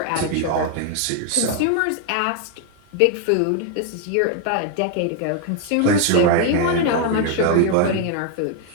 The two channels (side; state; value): both; different; correlation 0.00